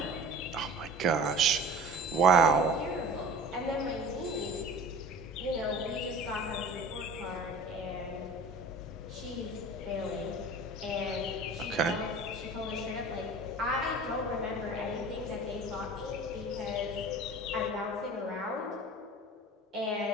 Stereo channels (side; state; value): both; normal; correlation 0.40